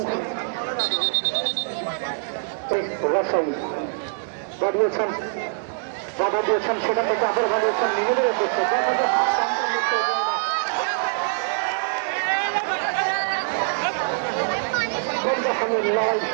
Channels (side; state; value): left; silent; 63 dB below the other